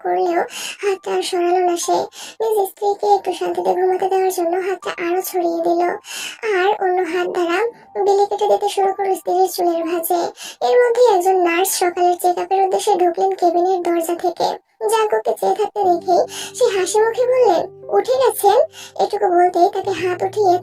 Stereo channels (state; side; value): identical; both; correlation 1.00